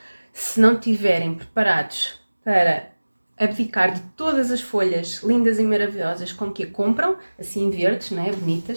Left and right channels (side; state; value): both; inverted; correlation -1.00